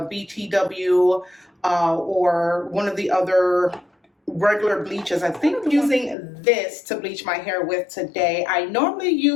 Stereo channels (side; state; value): right; drops out; at 6.2 s